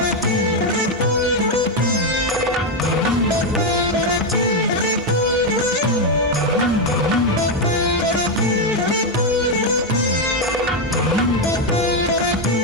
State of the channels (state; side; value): normal; both; correlation 0.04